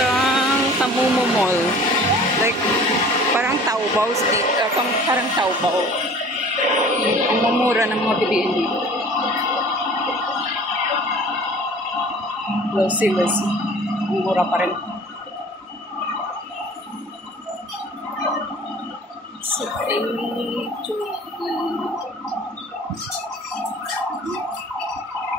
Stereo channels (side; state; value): both; normal; correlation 0.47